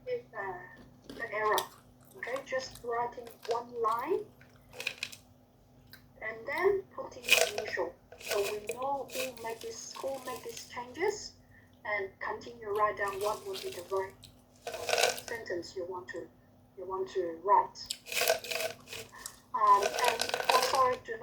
the error. Okay, just writing one line and then putting the initial. So we know who make these changes and continue write down what would be the right sentence you want to write. And also do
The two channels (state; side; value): identical; both; correlation 1.00